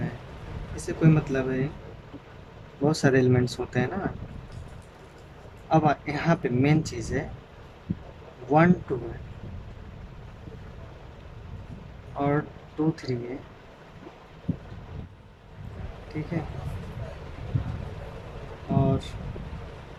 इससे कोई मतलब है, बहुत सारे एलिमेंट्स होते हैं ना। अब यहाँ पे मेन चीज़ है 1 2 है और 2 3 है, ठीक है। और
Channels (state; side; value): identical; both; correlation 1.00